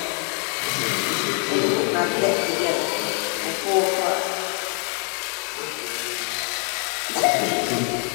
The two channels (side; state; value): right; quieter; 39.5 dB